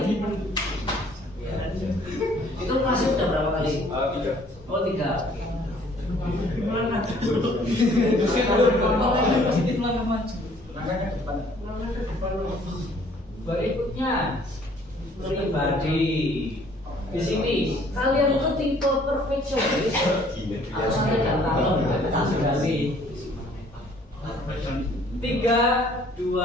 Itu masih udah berapa kali? 3. Oh, 3. Berikutnya pribadi. Di sini kalian itu tipe perfeksionis atau santai dan kalem? 3,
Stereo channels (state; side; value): normal; both; correlation 0.58